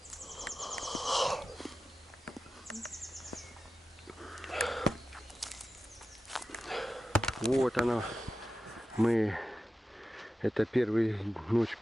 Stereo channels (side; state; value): both; normal; correlation 0.92